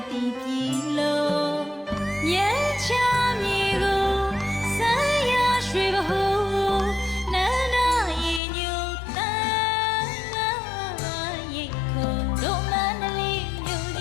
တိပြီလို့ညချမြေကိုဆန်းရရွှေဘဟုနန္ဒရေညူတန်းရိတ်ခုံတို့မန္တလေးမြို့ကြ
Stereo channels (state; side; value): drops out; right; at 8.4 s